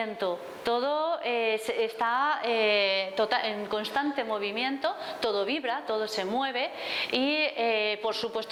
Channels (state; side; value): identical; both; correlation 1.00